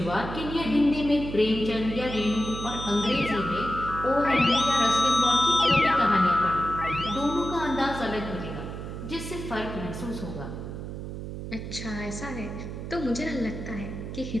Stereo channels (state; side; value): noise; right; hum, 8 dB below the sound